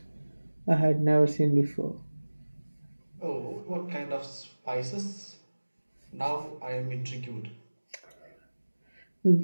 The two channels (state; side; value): inverted; both; correlation -1.00